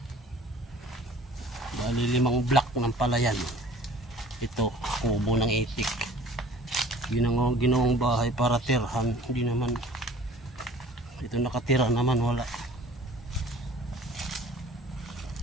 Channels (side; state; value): both; normal; correlation 0.50